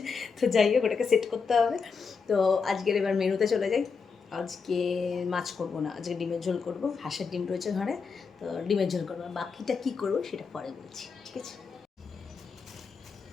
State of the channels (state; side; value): quieter; right; 5.3 dB